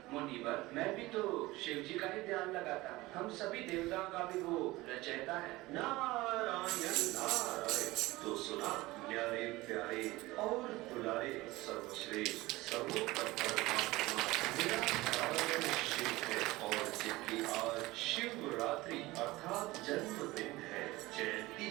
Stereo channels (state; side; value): quieter; left; 19.7 dB